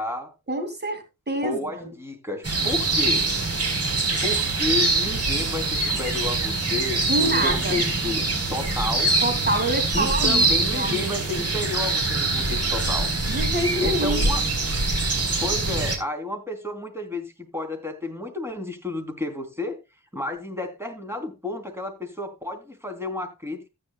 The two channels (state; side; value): normal; both; correlation 0.21